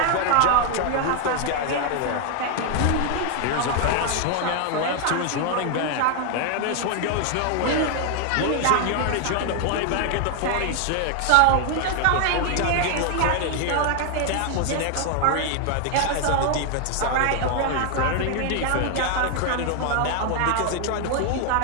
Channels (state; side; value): different; both; correlation 0.00